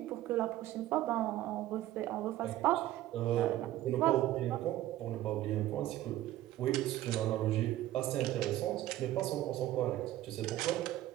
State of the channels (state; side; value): quieter; left; 14.5 dB